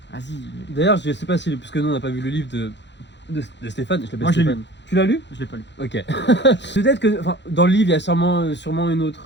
vas-y, D'ailleurs, je sais pas si. Parce que nous, on n'a pas vu le livre de Stéphane. Je l'appelle Moi, je l'ai Stéphane. Tu l'as lu? je l'ai pas lu. Ok. Peut-être que. Enfin, dans le livre, il y a sûrement une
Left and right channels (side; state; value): right; late; 0.52 ms